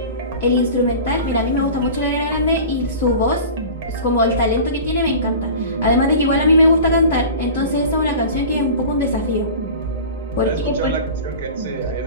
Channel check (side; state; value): both; inverted; correlation -0.37